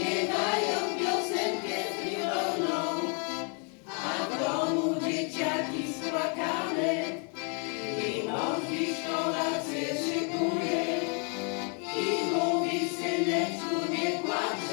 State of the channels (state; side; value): quieter; right; 38.7 dB